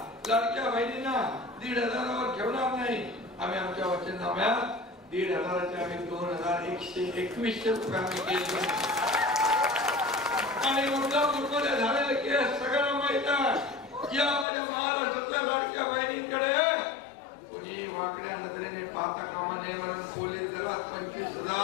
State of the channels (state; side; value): drops out; right; at 14.5 s